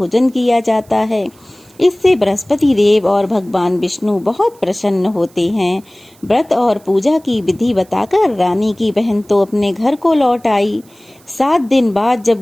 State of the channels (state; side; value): noise; right; hiss, 29 dB below the sound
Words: किया जाता है। इससे बृहस्पति देव और भगवान विष्णु बहुत प्रसन्न होते हैं। व्रत और पूजा की विधि बताकर रानी की बहन तो अपने घर को लौट आई। 7 दिन बाद